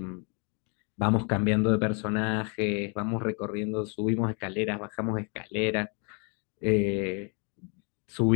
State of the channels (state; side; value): quieter; right; 36.5 dB